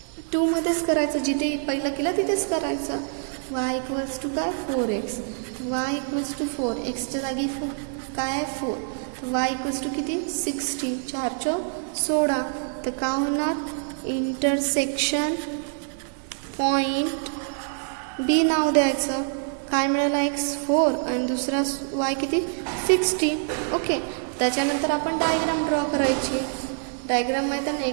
2 मध्येच करायचं, जिथे पहिलं केलं तिथेच करायचं. y इक्वल्स टू काय 4x, y इक्वल्स टू 4, एक्सच्या जागी काय आहे 4, y इक्वल्स टू किती 60, 4 चौक 16. तर काय होणार इंटरसेक्शन पॉईंट बी नाव द्यायचं. काय मिळालं x 4 आणि दुसरा y किती 60. ओके, त्याच्यानंतर आपण डायग्राम ड्रॉ करायची. डायग्राम माहीत आहे ना,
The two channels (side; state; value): left; silent; digital silence